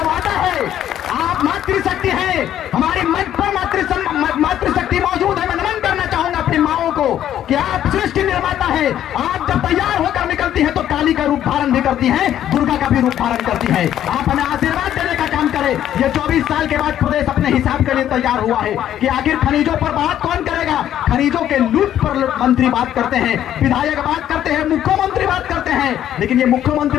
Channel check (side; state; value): right; quieter; 11.1 dB